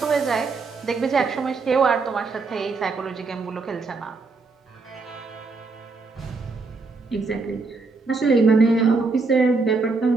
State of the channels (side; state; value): left; quieter; 4.1 dB